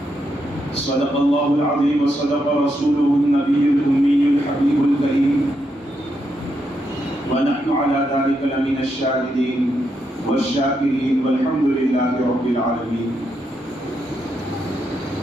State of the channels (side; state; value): both; normal; correlation 0.81